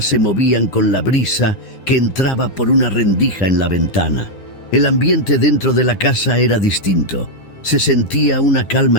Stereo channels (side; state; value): right; late; 9.8 ms